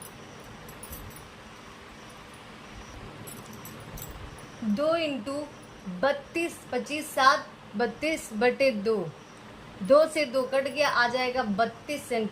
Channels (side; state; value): both; identical; correlation 1.00